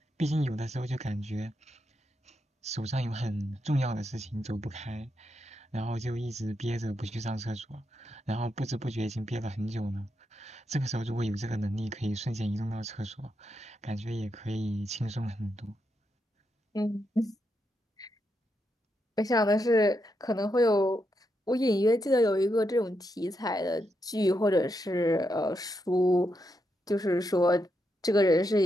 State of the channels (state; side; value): normal; both; correlation 0.83